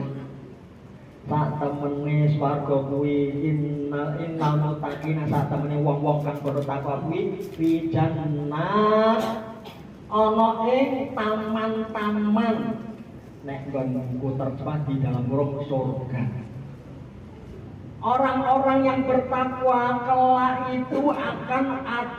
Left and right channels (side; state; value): both; identical; correlation 1.00